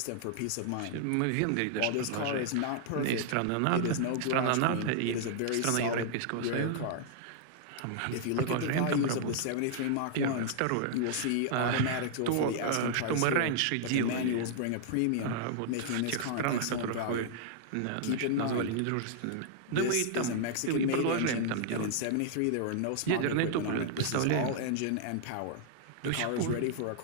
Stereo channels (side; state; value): both; different; correlation -0.01